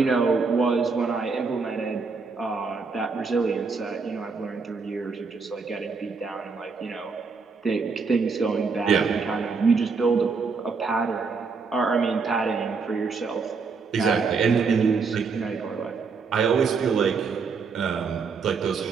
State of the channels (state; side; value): quieter; left; 4.9 dB